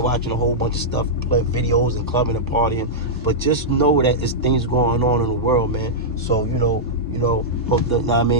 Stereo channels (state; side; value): normal; both; correlation -0.10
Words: watching a whole bunch of stuff, play videos and clubbing and partying, but just know that it's things going on in the world, man. So hope that, I